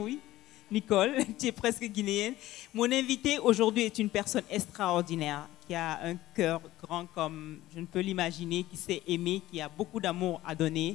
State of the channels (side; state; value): right; quieter; 15.9 dB